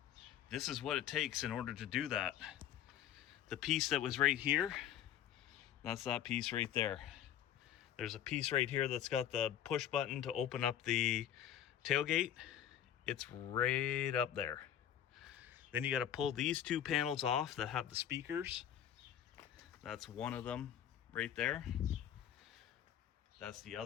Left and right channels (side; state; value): right; quieter; 10.5 dB